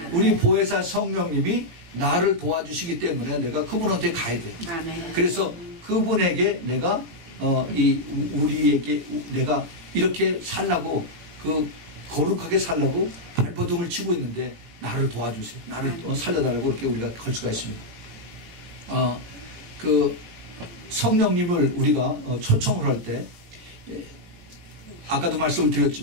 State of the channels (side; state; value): left; late; 18 ms